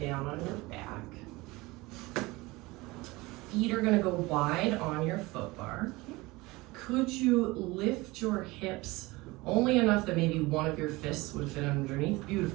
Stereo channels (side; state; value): left; quieter; 21.9 dB